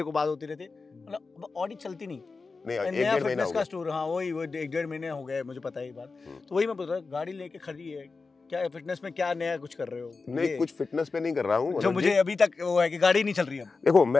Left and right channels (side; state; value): right; quieter; 4.2 dB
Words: को बात होती रहती है, मतलब ऑडी चलती नहीं, नहीं नया एक फिटनेस का स्टोर, हाँ वही 1-1.5 महीने हो गए, मुझे पता है ये बात। तो वही मैं बोल रहा हूँ, गाड़ी लेके खड़ी है, क्या फिटनेस में क्या नया कुछ कर रहे हो? नहीं, कुछ फिटनेस पे नहीं कर रहा हूँ, जो मुझे अभी तक वो है कि गाड़ी नहीं चल रही है। देखो